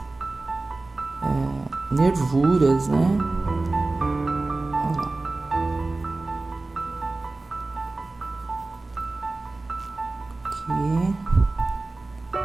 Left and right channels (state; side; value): quieter; left; 3.2 dB